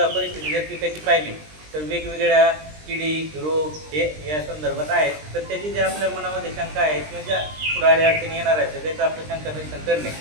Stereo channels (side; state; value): left; late; 20 ms